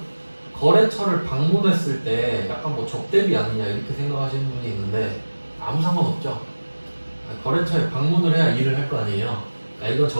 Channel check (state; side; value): inverted; both; correlation -1.00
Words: 거래처를 방문했을 때 약간 뭐 접대비 아니냐 이렇게 생각하시는 분이 있는데 아무 상관없죠. 거래처에 방문을 해야 일을 할 거 아니에요. 그러니까 이건